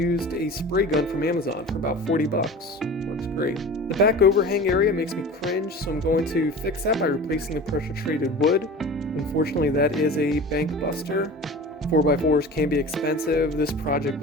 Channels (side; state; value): both; normal; correlation 0.36